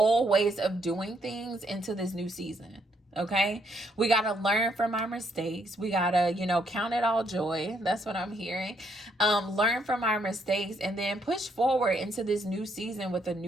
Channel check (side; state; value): both; normal; correlation 0.72